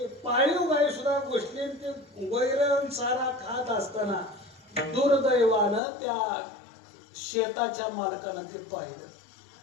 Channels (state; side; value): drops out; right; at 5.8 s